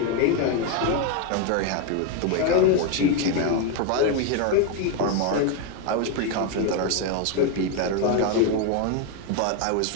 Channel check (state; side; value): different; both; correlation 0.02